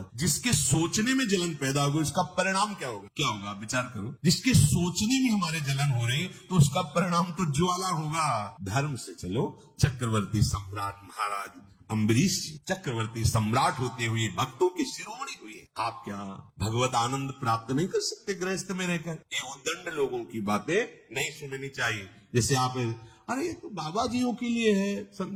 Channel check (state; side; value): identical; both; correlation 1.00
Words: जिसके सोचने में जलन पैदा होगी उसका परिणाम क्या होगा? क्या होगा? विचार करो। जिसके सोचने में हमारे जलन हो रही तो उसका परिणाम तो ज्वाला होगा। धर्म से चलो। चक्रवर्ती सम्राट महाराज अम्बरीश जी चक्रवर्ती सम्राट होते हुए भक्तों के शिरोमणि हुए। आप क्या भगवत आनंद प्राप्त नहीं कर सकते गृहस्थ में रहकर? ये उद्दंड लोगों की बातें नहीं सुननी चाहिए। जैसे आप, अरे ये तो बाबा जियों के लिए है,